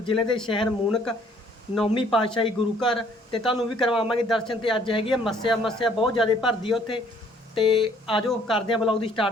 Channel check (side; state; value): both; normal; correlation 0.61